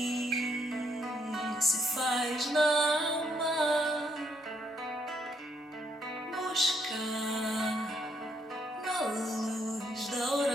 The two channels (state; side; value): normal; both; correlation 0.73